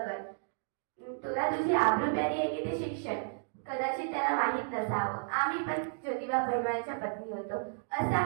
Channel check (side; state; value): left; silent; digital silence